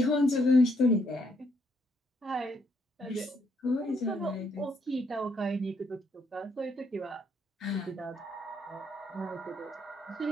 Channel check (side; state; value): both; normal; correlation 0.73